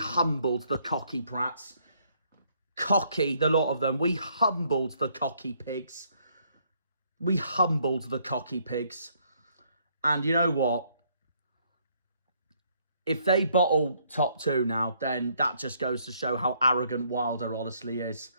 the cocky prats. Cocky, the lot of them. We humbled the cocky pigs. And you know what? If they bottle top two now, then that just goes to show how arrogant Wilder honestly is.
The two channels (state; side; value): inverted; both; correlation -0.69